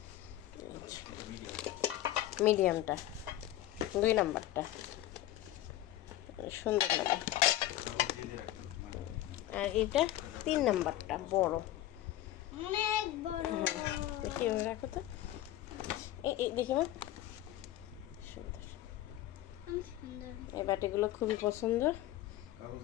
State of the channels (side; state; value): right; quieter; 14.0 dB